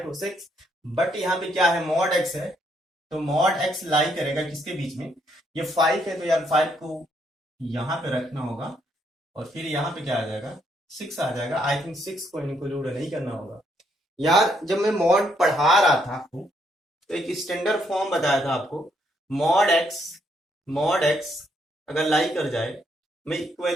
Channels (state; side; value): normal; both; correlation 0.73